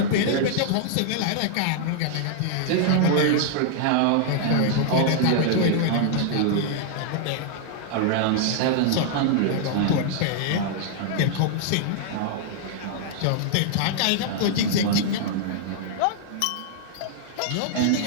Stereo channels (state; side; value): different; both; correlation -0.01